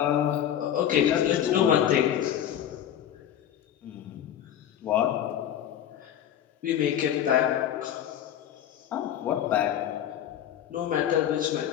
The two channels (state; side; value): quieter; right; 10.4 dB